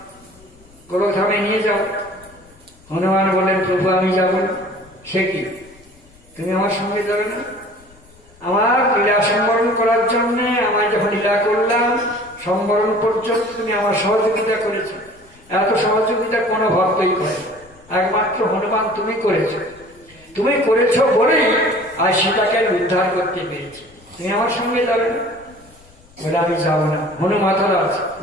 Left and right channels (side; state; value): left; noise; rumble, 27 dB below the sound